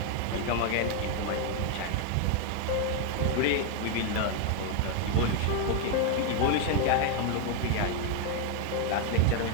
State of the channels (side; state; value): both; different; correlation 0.01